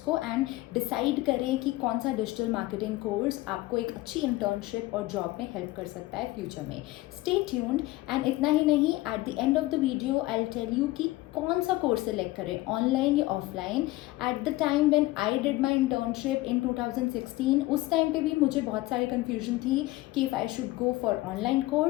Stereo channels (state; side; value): quieter; right; 18.7 dB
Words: एंड डिसाइड करें कि कौन सा डिजिटल मार्केटिंग कोर्स आपको एक अच्छी इंटर्नशिप और जॉब में हेल्प कर सकता है फ्यूचर में। Stay tuned. एंड इतना ही नहीं, at the end of the video I will tell you कि कौन सा कोर्स सेलेक्ट करें, ऑनलाइन या offline. At the time when I did my internship in 2016, उस टाइम पे भी मुझे बहुत सारी कन्फ्यूजन थी कि if I should go for online